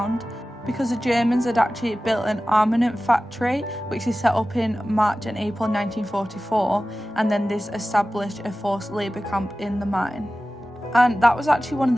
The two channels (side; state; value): both; normal; correlation 0.96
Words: because the Germans had actually built an armament factory which they set up in March and April 1944, and then this established a forced labour camp in the mine. And that was actually one of